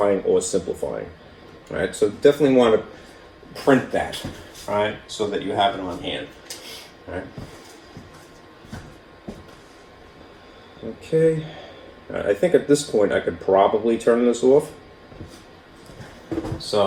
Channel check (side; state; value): both; identical; correlation 1.00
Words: or simplifying. All right, so definitely want to print that, all right, so that you have it on hand. All right. Okay. I think at this point I could probably turn this off.